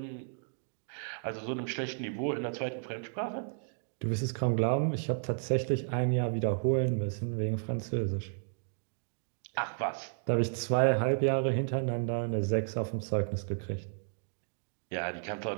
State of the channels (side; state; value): left; silent; digital silence